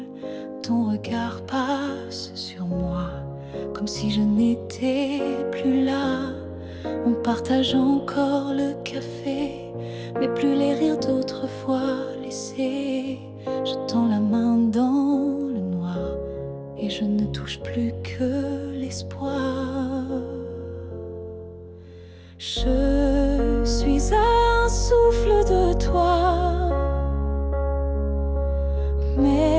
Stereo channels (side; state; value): both; identical; correlation 1.00